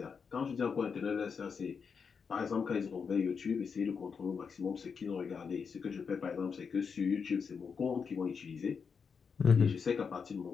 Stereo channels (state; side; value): quieter; right; 5.9 dB